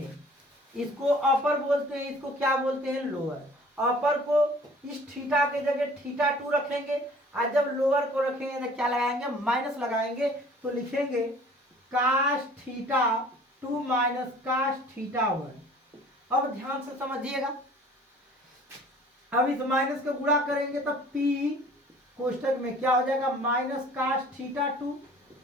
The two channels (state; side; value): normal; both; correlation 0.50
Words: इसको अपर बोलते हैं, इसको क्या बोलते हैं लोअर। अपर को इस थीटा के जगह θ2 रखेंगे और जब लोअर को रखेंगे तो क्या लगाएंगे माइनस लगाएंगे, तो लिखेंगे cos θ2 माइनस cos θ1। अब ध्यान से समझिएगा, अब इस माइनस को गुणा करेंगे तो P कोष्टक में क्या हो जाएगा माइनस cos θ2